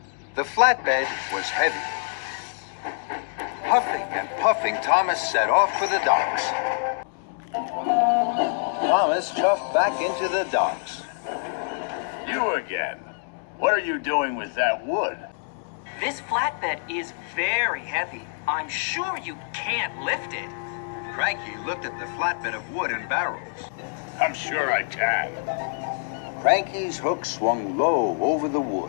The flatbed was heavy. Huffing and puffing, Thomas set off for the docks. Thomas chuffed back into the docks. You again. What are you doing with that wood? This flatbed is very heavy. I'm sure you can't lift it. Cranky looked at the flatbed of wood and barrels. I'm sure I can. Cranky's hook swung low over the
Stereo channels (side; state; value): right; silent; digital silence